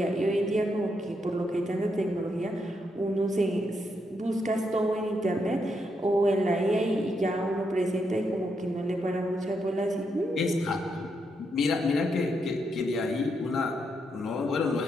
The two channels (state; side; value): normal; both; correlation 0.80